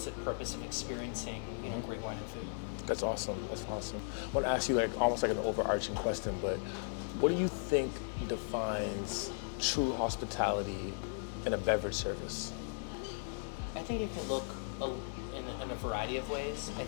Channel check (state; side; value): silent; right; digital silence